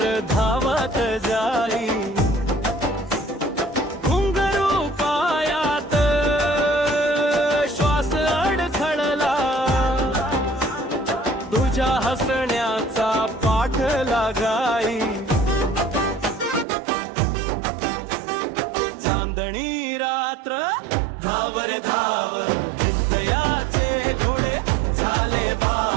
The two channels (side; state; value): left; drops out; at 16.7 s